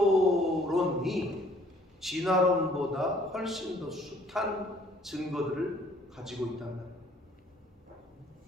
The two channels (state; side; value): normal; both; correlation 0.59